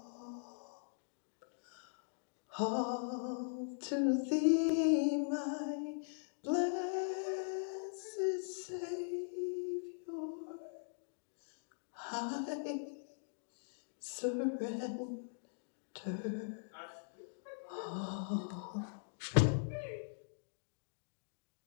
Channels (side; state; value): right; silent; digital silence